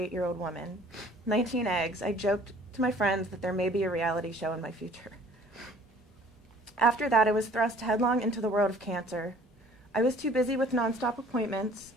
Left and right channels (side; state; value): both; normal; correlation 0.53